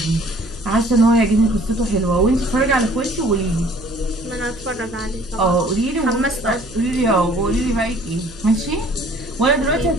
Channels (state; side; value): noise; right; hum, 21 dB below the sound